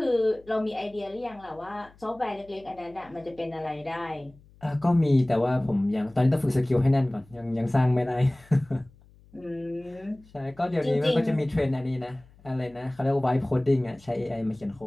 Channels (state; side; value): noise; left; hum, 26 dB below the sound